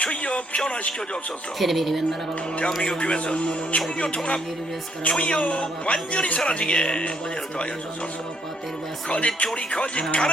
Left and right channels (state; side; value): normal; both; correlation 0.70